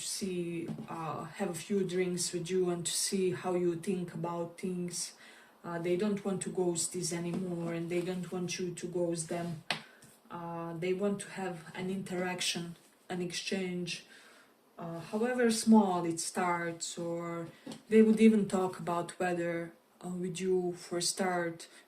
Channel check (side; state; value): both; identical; correlation 1.00